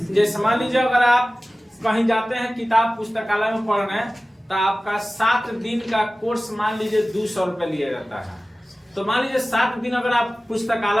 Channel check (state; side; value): normal; both; correlation 0.97